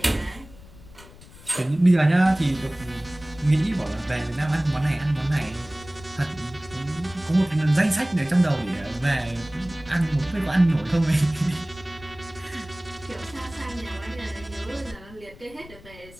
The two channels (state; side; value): noise; left; rumble, 20 dB below the sound